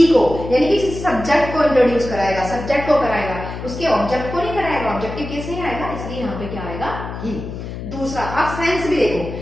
को, यानी कि सब्जेक्ट को इंट्रोड्यूस कराएगा, सब्जेक्ट को कराएगा, उसके ऑब्जेक्ट को नहीं कराएगा, ऑब्जेक्टिव केस नहीं आएगा, इसलिए यहाँ पे क्या आएगा? ही। दूसरा, आप सेंस भी देखो,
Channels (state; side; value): noise; left; hum, 8 dB below the sound